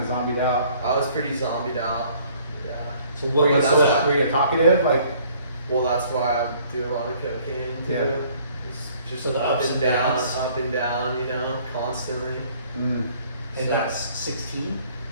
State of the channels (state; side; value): inverted; both; correlation -0.58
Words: zombied out. I was pretty zombied out. Yeah. So Were what you, was that's that? were you talkative? Like, Well, that's why I do a lot of cocaine too. Yeah. It's just So the up ups and and down, downs. up and down, you know, constantly. mm, And So- that's 16?